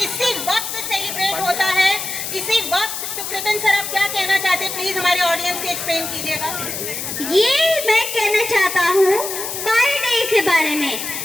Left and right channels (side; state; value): left; noise; hiss, 5 dB below the sound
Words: इसी वक्त सेलिब्रेट होता है, इसी वक्त। तो कृतिन सर आप क्या कहना चाहते हैं, प्लीज हमारे ऑडियंस को एक्सप्लेन कीजिएगा। ये मैं कहना चाहता हूँ पाई डे के बारे में।